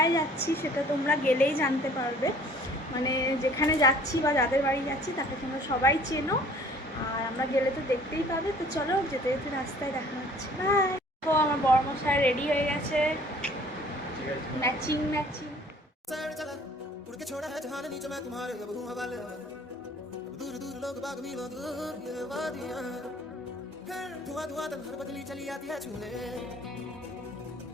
যাচ্ছি সেটা তোমরা গেলেই জানতে পারবে। মানে যেখানে যাচ্ছি বা যাদের বাড়ি যাচ্ছি তাকে তোমরা সবাই চেনো, আর আমরা গেলে তো দেখতেই পাবে। তো চলো, যেতে যেতে রাস্তায় দেখা হচ্ছে। বাই। তো আমার বড়মশাই রেডি হয়ে গেছে, ম্যাচিং ম্যাচিং। दूर दूर लोग बाग मिलो दूर ये वादियां, धुआं धुआं तन्हार बदली चली आती है छूने,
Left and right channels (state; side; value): normal; both; correlation 0.53